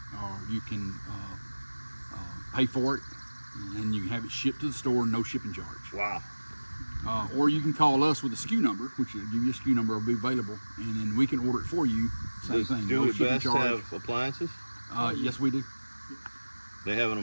or you can pay for it, and you can have it shipped to the store, no shipping charge. Wow. Or you can call us with a SKU number, which will give you a SKU number, will be available, and then we can order it for you. Same thing. Do No It shipping Best charge. have appliances? Yes, we do. They having a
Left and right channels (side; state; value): both; inverted; correlation -1.00